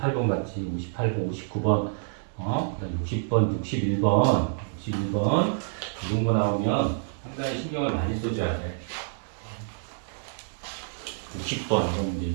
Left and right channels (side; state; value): left; silent; digital silence